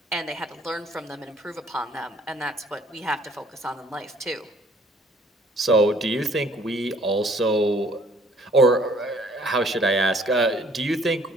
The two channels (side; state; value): both; normal; correlation 0.58